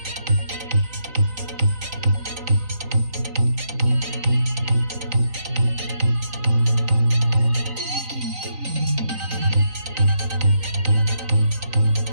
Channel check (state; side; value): late; left; 3.9 ms